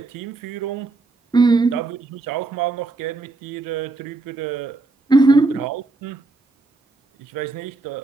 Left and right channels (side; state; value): left; quieter; 3.4 dB